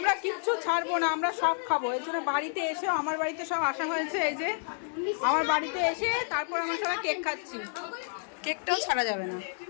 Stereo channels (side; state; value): right; silent; digital silence